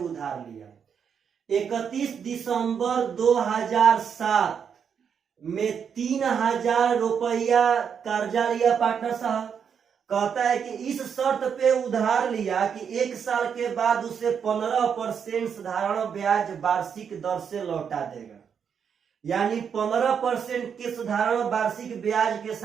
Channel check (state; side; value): quieter; left; 7.2 dB